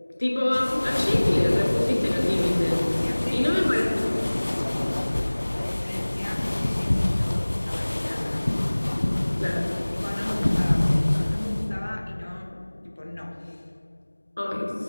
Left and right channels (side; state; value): both; inverted; correlation -1.00